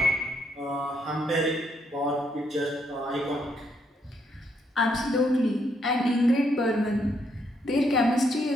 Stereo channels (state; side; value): normal; both; correlation 0.74